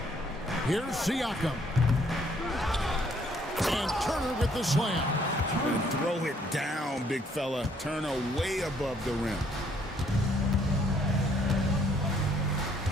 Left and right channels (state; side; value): normal; both; correlation 0.65